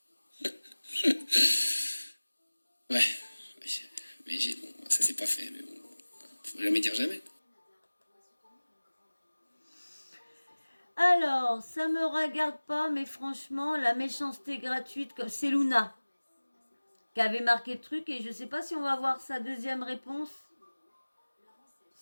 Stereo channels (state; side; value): inverted; both; correlation -1.00